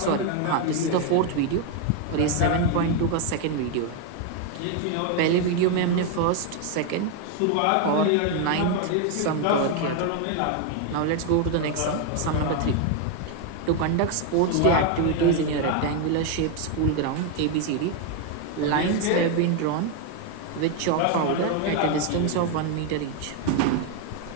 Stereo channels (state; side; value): different; both; correlation 0.01